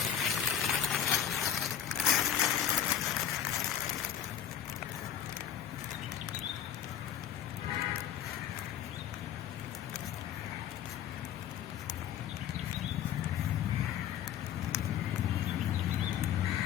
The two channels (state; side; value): quieter; right; 9.7 dB